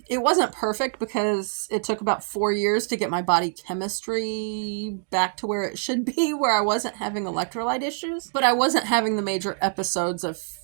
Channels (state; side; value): silent; left; digital silence